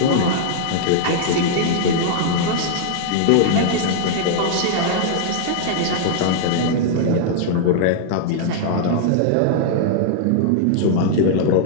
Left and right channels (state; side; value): different; both; correlation -0.01